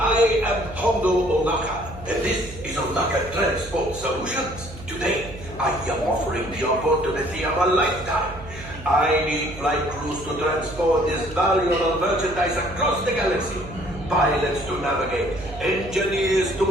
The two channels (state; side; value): noise; right; hum, 14 dB below the sound